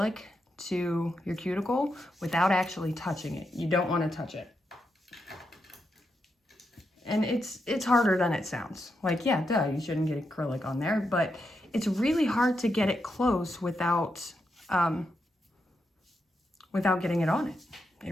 to your cuticle without actually touching it. You don't want to touch it. And it's harder than it sounds. Like, yeah, duh, you shouldn't get acrylic on there, but it's really hard to get it close without getting it on it. It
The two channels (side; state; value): both; normal; correlation 0.84